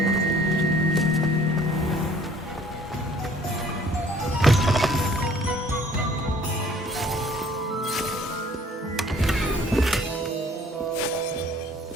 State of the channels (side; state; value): both; normal; correlation 0.56